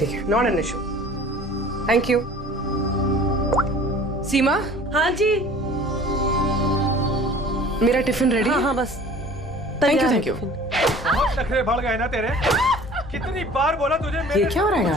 not an issue. Thank you. Seema. हाँ जी। मेरा टिफिन रेडी? हाँ बस। Thank you. बहुत नखरे बढ़ गए ना तेरे। कितनी बार बोला तुझे मेरे ये क्या हो रहा है यहाँ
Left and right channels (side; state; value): both; normal; correlation 0.46